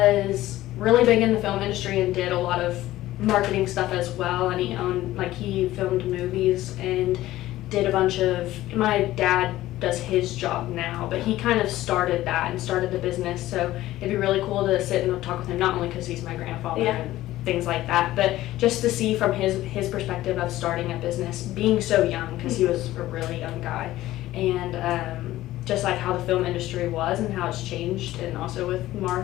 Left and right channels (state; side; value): quieter; right; 15.5 dB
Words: really big in the film industry and did a lot of marketing stuff as well. And he filmed movies and did a bunch of. My dad does his job now, but he kind of started that and started the business. So it'd be really cool to sit and talk with him, not only because he's my grandfather and things like that, but just to see from his perspective of starting a business, being so young, because he was a really young guy, and just like how the film industry was and how it's changed, and also with